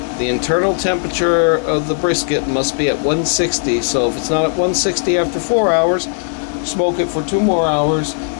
The internal temperature of the brisket must be at 160, so if it's not at 160 after 4 hours, smoke it for 2 more hours.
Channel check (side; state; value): right; silent; 63 dB below the other